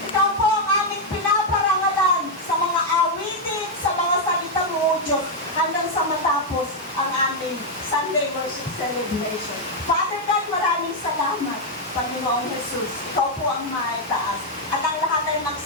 Ikaw po ang aming pinaparangalan sa mga awitin, sa mga salita mo, O Diyos, hanggang sa matapos ang aming Sunday worship celebration. Father God, maraming salamat, Panginoon Jesus. Ikaw po ang maitaas. At ang lahat ay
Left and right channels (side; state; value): both; normal; correlation 0.00